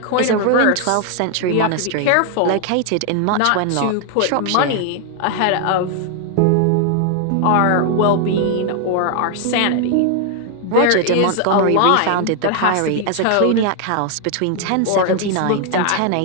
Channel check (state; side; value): different; both; correlation 0.00